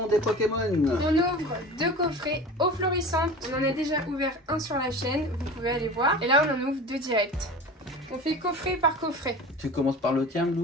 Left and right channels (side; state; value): both; normal; correlation 0.36